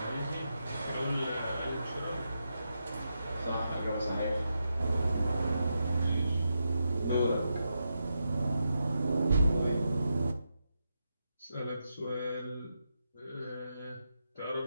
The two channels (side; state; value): both; inverted; correlation -0.86